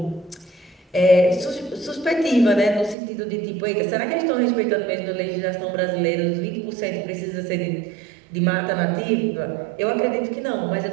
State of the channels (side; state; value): left; drops out; at 3.0 s